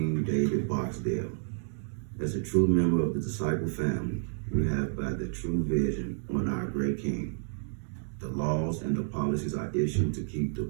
David Barksdale. As a true member of the disciple family, we have by the true vision on our great King. The laws and the policies are issued to keep the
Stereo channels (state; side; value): silent; left; digital silence